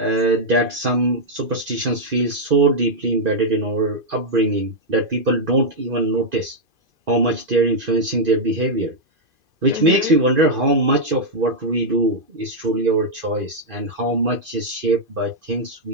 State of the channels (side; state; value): left; late; 2.5 ms